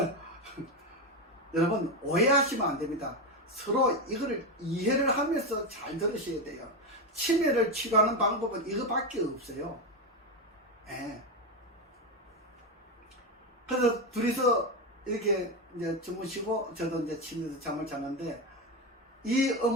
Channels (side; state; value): both; normal; correlation 0.11